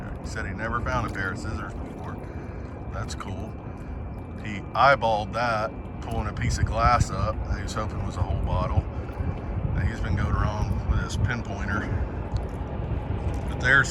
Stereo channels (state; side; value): identical; both; correlation 1.00